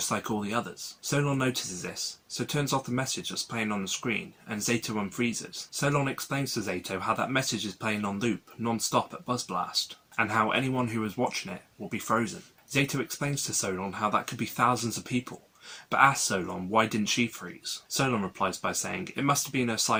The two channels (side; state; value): both; identical; correlation 1.00